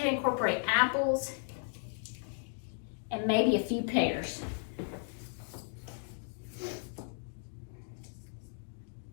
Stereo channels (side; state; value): right; silent; digital silence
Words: incorporate apples and maybe a few pears.